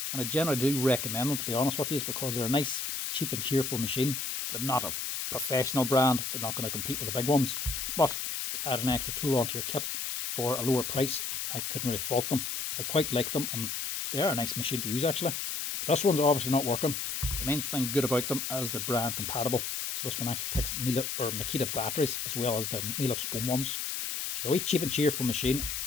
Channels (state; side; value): noise; left; hiss, 3 dB below the sound